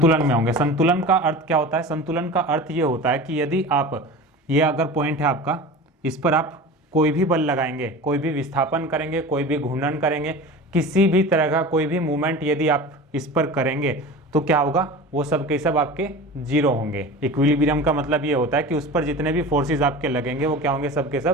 में होंगे। संतुलन का अर्थ क्या होता है? संतुलन का अर्थ ये होता है कि यदि आप, ये अगर पॉइंट है आपका, इस पर आप कोई भी बल लगाएंगे, कोई भी विस्थापन करेंगे, कोई भी घूर्णन करेंगे, किसी भी तरह का कोई भी मूवमेंट यदि आप इस पर करेंगे तो क्या होगा, वो सब के सब आपके जीरो होंगे। इक्विलिब्रियम का मतलब ये होता है कि उस पर जितने भी फोर्सेस आपके लगेंगे वो क्या होंगे, सब के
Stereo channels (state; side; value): normal; both; correlation 0.34